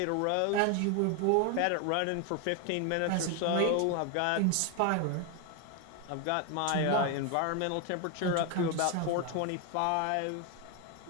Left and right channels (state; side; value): different; both; correlation 0.01